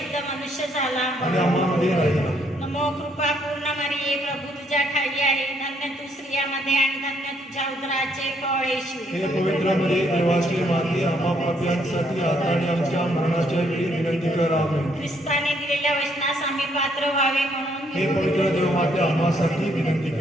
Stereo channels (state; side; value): normal; both; correlation 0.70